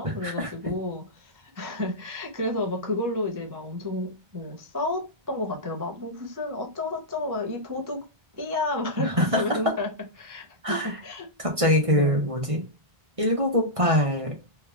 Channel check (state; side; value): late; left; 1.6 ms